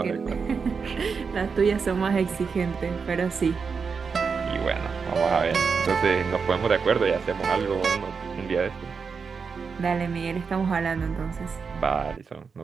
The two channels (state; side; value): quieter; left; 5.5 dB